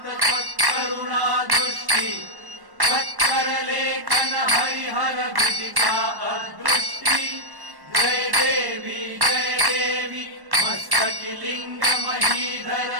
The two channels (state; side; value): late; left; 1.1 ms